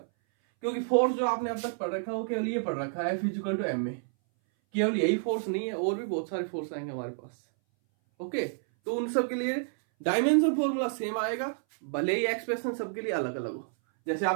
क्योंकि फोर्स जो आपने अब तक पढ़ रखा है वो केवल ये पढ़ रखा है F इक्वल टू m में। केवल यही फोर्स नहीं है, और भी बहुत सारे फोर्स आएंगे हमारे पास। ओके, तो उन सब के लिए डायमेंशन फॉर्मूला सेम आएगा, भले ही एक्सप्रेशन सबके लिए अलग अलग हो। जैसे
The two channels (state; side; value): silent; left; 58 dB below the other